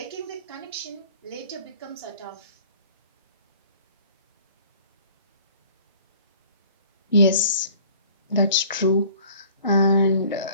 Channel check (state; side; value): inverted; both; correlation -0.51